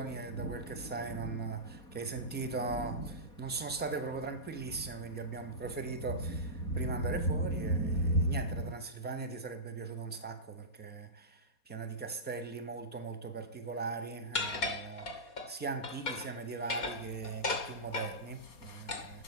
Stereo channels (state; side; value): late; right; 4.2 ms